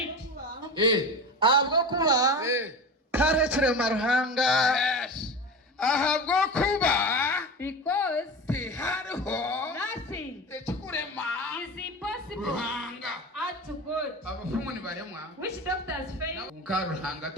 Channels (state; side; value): normal; both; correlation 0.28